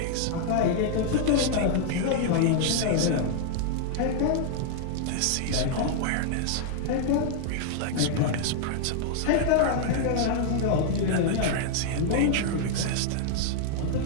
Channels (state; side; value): different; both; correlation -0.01